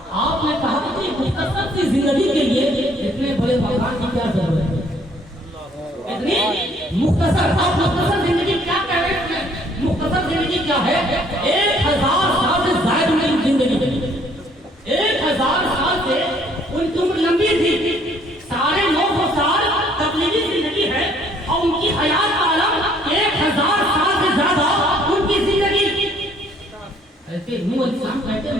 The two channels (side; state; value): both; normal; correlation 0.62